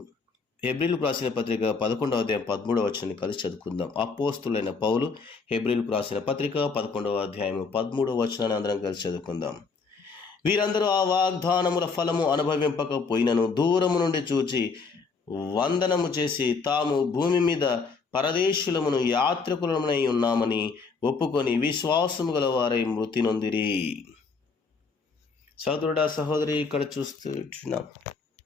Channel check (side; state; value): right; quieter; 4.7 dB